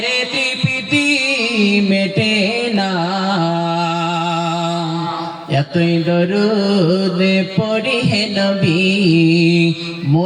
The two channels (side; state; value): both; identical; correlation 1.00